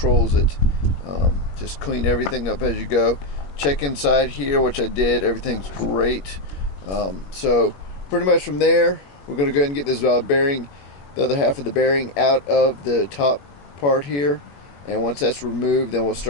it. Just clean everything up as you go. Check inside here, which I did. Everything's great. So pretty much from there, we're going to go ahead and get this bearing, the other half of the bearing, out of the top part here. And once that's removed, then we'll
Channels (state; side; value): late; right; 21 ms